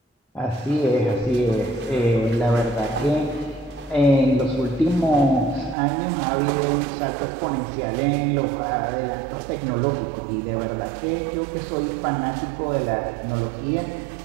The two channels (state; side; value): drops out; left; at 5.8 s